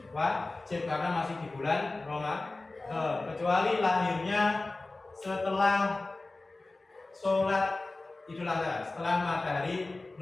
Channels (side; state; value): right; quieter; 3.2 dB